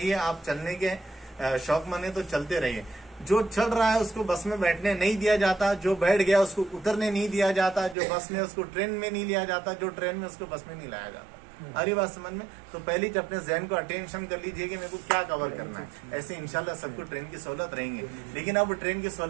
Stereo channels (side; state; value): left; drops out; at 8.0 s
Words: आप चलने के शौक मने तो चलते रहिए। जो चल रहा है उसको बस में बैठने नहीं दिया जाता, जो बैठ गया उसको उतरने नहीं दिया जाता, जो बस में उसको ट्रेन में नहीं लिया जाता, जो ट्रेन में उसको बस में नहीं लाया जाता। अरे बात समझ में? तो पहले अपने जहन को अटेंशन कर लीजिए कि मेरे को क्या कवर करना है। ऐसे इंशाल्लाह सबको ट्रेन की सहूलत रहेंगे। लेकिन अब ट्रेन की